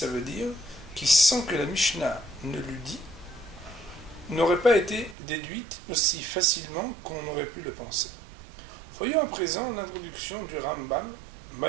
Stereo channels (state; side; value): drops out; left; at 5.2 s